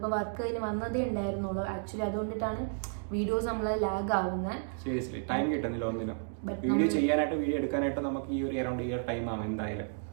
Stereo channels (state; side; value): silent; left; digital silence